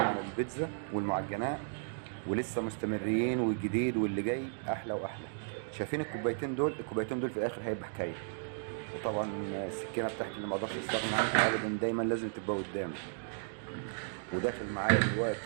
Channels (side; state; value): left; silent; digital silence